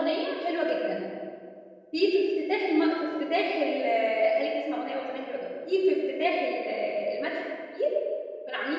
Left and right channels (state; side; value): identical; both; correlation 1.00